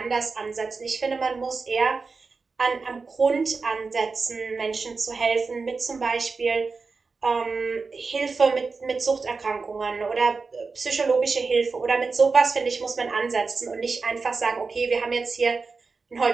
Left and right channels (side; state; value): left; quieter; 4.4 dB